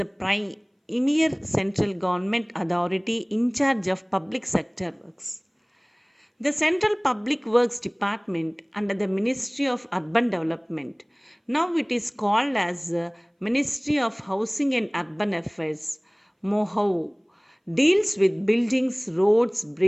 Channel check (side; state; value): both; identical; correlation 1.00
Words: premier central government authority in charge of public sector works. The Central Public Works Department under the Ministry of Urban Development, now it is called as Ministry of Housing and Urban Affairs, MOHAU, deals with buildings, roads,